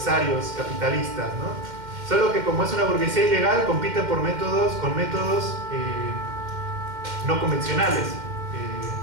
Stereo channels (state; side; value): late; left; 2.1 ms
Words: capitalistas, ¿no? Solo que como es una burguesía ilegal, compiten con métodos no convencionales.